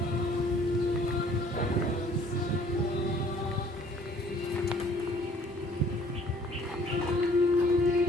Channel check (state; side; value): normal; both; correlation 0.57